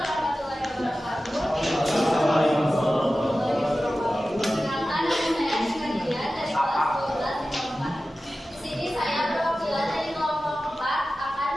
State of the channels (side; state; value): both; normal; correlation 0.95